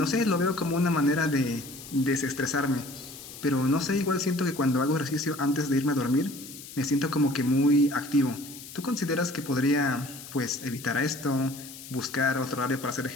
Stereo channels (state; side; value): noise; left; hiss, 15 dB below the sound